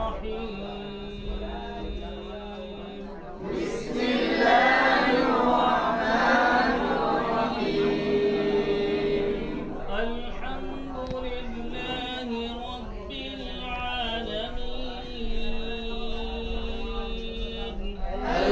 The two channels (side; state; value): both; identical; correlation 1.00